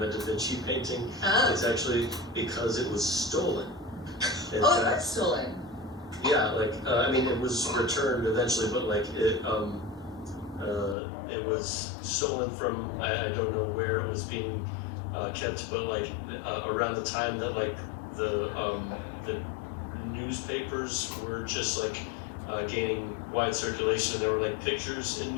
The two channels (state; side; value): drops out; right; at 11.0 s